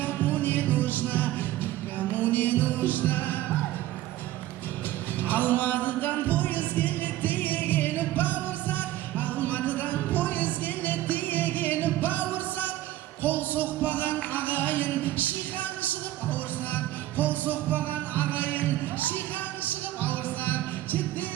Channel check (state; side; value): quieter; left; 14.7 dB